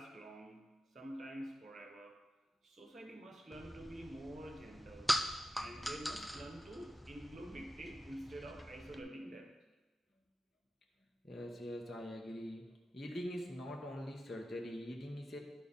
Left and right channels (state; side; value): normal; both; correlation 0.92